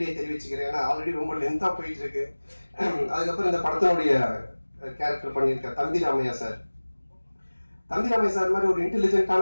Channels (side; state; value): both; inverted; correlation -1.00